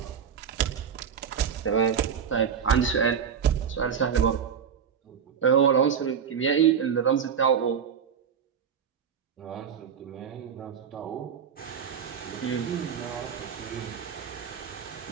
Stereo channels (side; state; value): left; quieter; 7.5 dB